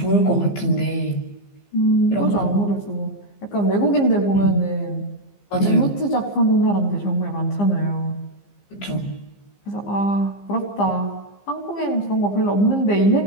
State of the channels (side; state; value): right; late; 15 ms